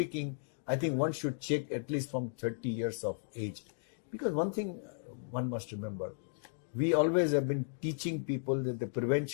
I think one should check at least from 30 years of age. Because one thing one must remember, we always have been teaching people that the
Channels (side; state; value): right; silent; digital silence